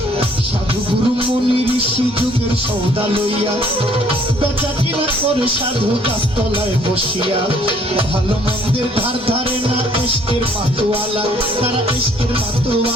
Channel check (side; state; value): both; normal; correlation 0.61